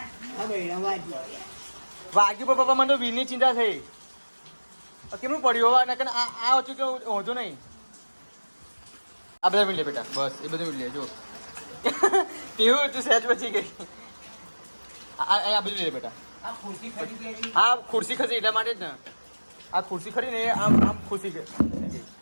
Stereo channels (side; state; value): both; inverted; correlation -1.00